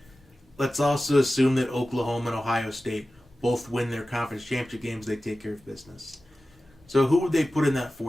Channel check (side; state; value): both; normal; correlation 0.95